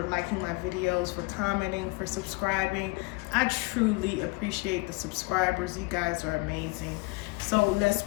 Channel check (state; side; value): quieter; right; 26.0 dB